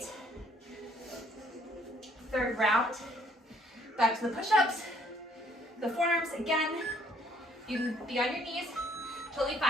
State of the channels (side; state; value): both; normal; correlation 0.64